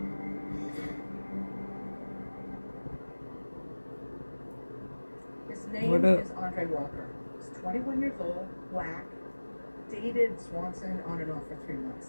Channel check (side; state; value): both; inverted; correlation -1.00